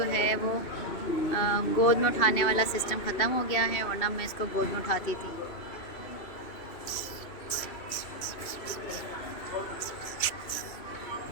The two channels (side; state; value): right; late; 2.7 ms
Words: है वो गोद में उठाने वाला सिस्टम ख़त्म हो गया है, वरना मैं इसको गोद में उठाती थी।